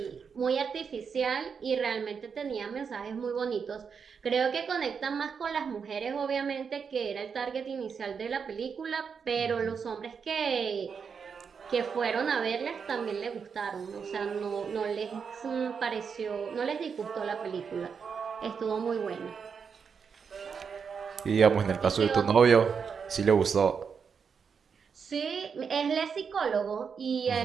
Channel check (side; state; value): left; quieter; 6.2 dB